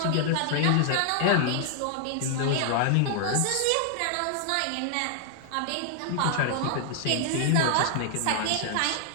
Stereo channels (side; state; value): both; different; correlation 0.00